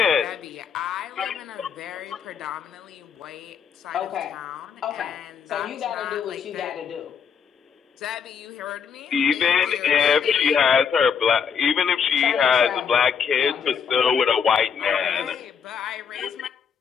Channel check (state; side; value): quieter; right; 6.8 dB